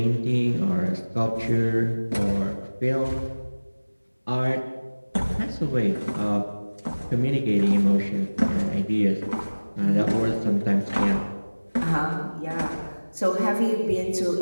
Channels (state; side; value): inverted; both; correlation -1.00